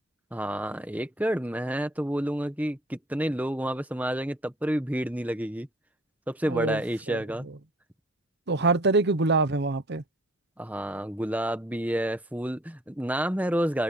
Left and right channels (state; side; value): normal; both; correlation 0.54